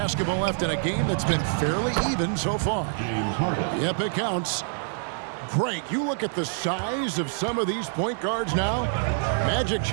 left in a game that's been fairly even so far. Yep, it counts. Greg, you look at the size of some of these point guards now. Magic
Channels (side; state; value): left; silent; digital silence